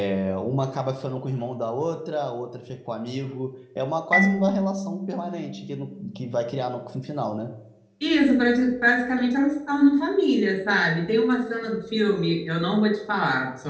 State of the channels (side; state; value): both; identical; correlation 1.00